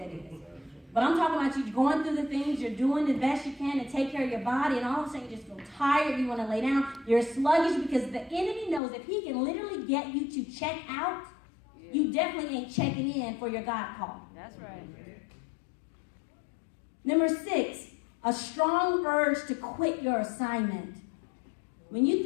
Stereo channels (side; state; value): right; drops out; at 8.8 s